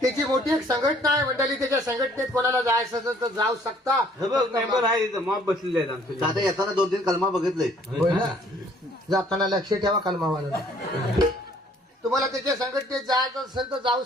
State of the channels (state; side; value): normal; both; correlation 0.59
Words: त्याची मोठी एक संघटना आहे मंडळी. त्याच्या संघटनेत कोणाला जायचं असेल तर जाऊ शकता. मेंबर आहे इथं मॉब बसलेले आहेत आमचे. आता येताना 2-3 कलमा बघितले. होय ना? जाताना लक्ष ठेवा कलमावाला. तुम्हाला त्याच्या संघटनेत जायचं असेल तर जाऊ